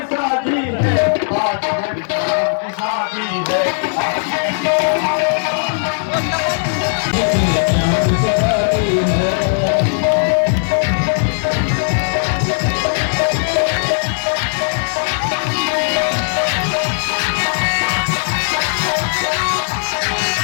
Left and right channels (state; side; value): silent; right; digital silence